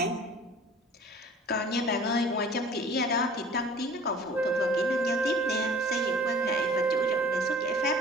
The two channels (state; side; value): normal; both; correlation 0.47